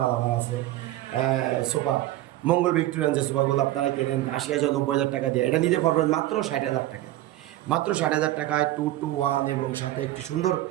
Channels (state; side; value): quieter; left; 15.4 dB